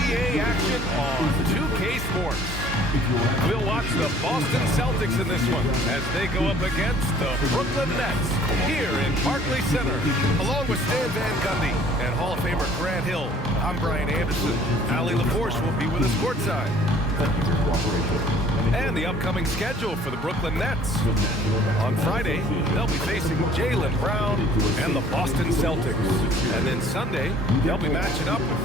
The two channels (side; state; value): both; normal; correlation 0.54